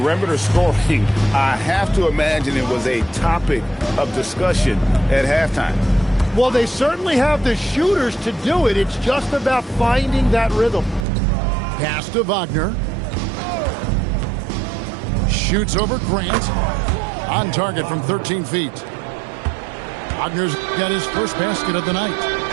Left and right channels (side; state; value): left; drops out; at 11.1 s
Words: scoring, I have to imagine it was a topic of discussion at halftime. Well, they certainly have the shooters to do it. It's just about finding that rhythm. Pass to Wagner. Shoots over Grant. On target from 13 feet. Wagner's got his first basket of the night.